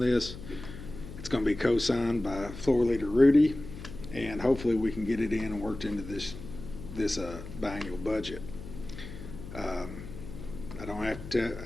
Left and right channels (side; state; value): left; noise; hum, 12 dB below the sound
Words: It's going to be co-signed by Floor Leader Rudy, and hopefully we can get it in and worked into this biannual budget. I don't have to,